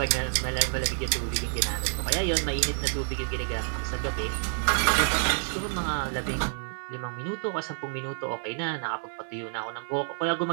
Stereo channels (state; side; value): silent; left; 59 dB below the other